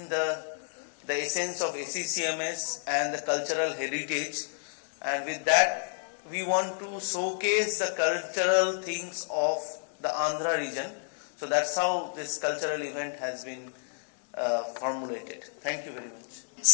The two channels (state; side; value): silent; right; digital silence